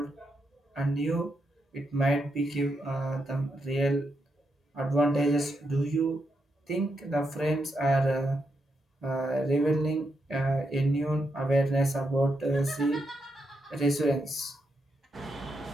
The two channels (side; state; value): both; normal; correlation 0.83